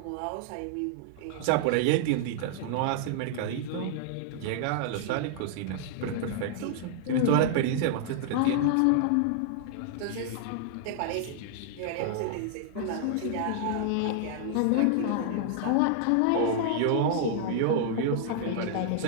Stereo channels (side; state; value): both; different; correlation -0.01